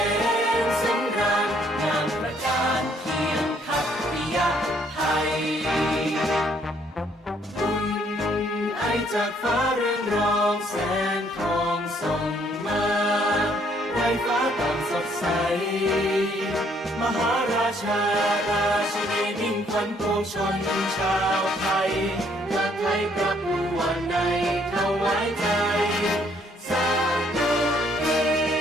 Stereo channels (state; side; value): normal; both; correlation 0.66